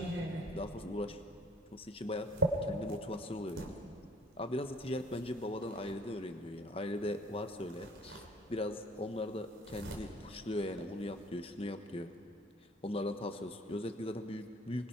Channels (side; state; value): both; normal; correlation 0.53